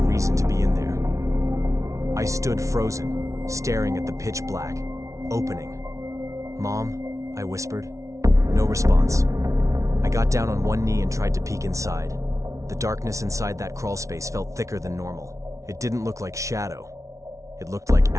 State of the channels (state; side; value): late; left; 0.15 ms